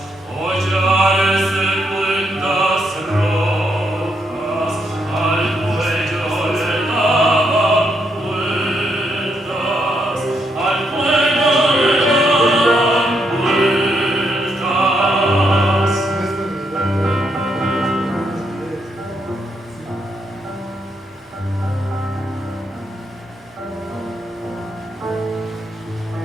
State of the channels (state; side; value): normal; both; correlation 0.77